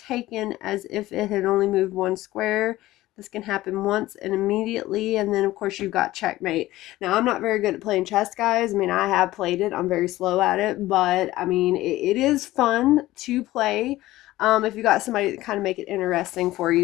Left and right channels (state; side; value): quieter; right; 16.7 dB